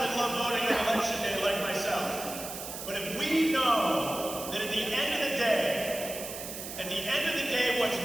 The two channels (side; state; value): right; noise; hiss, 9 dB below the sound